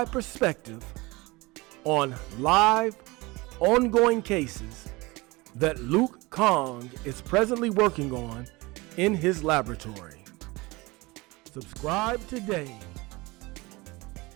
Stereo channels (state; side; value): quieter; left; 23.0 dB